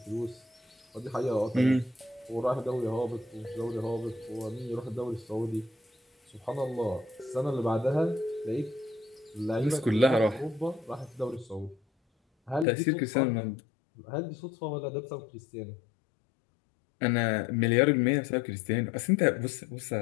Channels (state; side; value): drops out; right; at 12.7 s